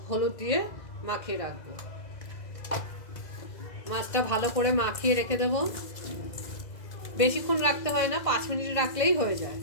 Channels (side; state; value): right; late; 2.0 ms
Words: हलुद दिए माखिए राखबो। মাছটা ভালো করে মাখিয়ে রেখে দেব। বেশিক্ষণ রাখতে হয় না, 5 মিনিট রাখলেই হয়ে যায়।